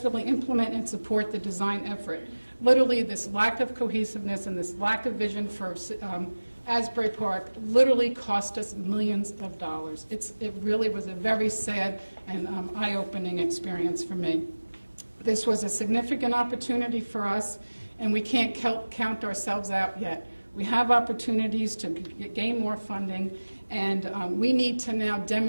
implement and support the design effort. Literally, this lack of cohesiveness and this lack of vision for Asbury Park literally cost us millions of dollars. It really was a very sad and eye-opening experience for me. This was a significant opportunity for us, and we can't count ourselves out yet. We have opportunities to gain more funding, and we need to now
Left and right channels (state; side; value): inverted; both; correlation -1.00